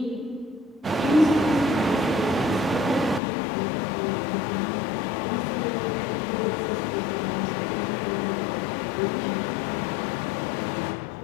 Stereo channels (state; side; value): drops out; right; at 3.2 s